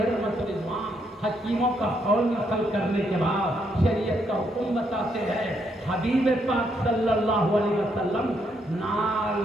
رحمت رضوان حکیموں کا قول نقل کرنے کے بعد شریعت کا حکم بتاتے ہیں، حبیب پاک صلی اللہ علیہ وسلم نال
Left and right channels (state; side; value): normal; both; correlation 0.75